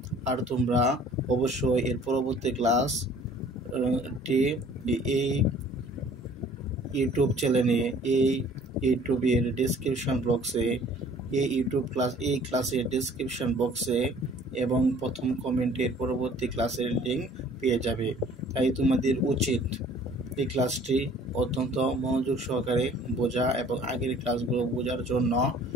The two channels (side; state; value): both; normal; correlation 0.53